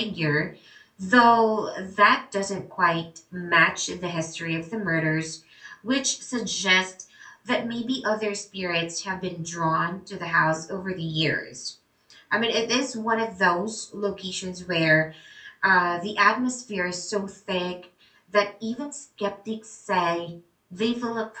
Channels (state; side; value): identical; both; correlation 1.00